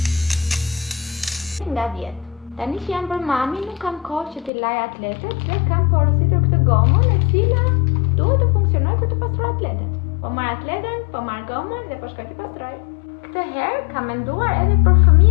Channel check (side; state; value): right; drops out; at 4.5 s